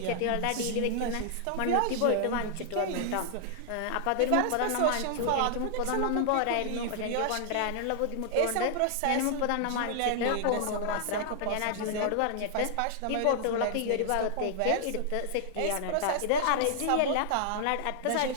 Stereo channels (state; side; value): different; both; correlation -0.01